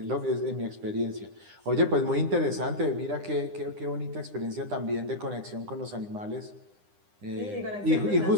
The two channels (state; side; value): late; left; 9.9 ms